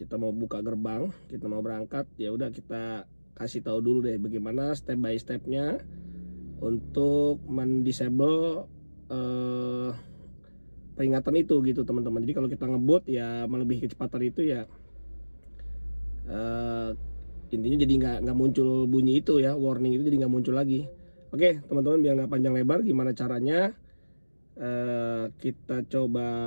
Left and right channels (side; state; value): both; inverted; correlation -1.00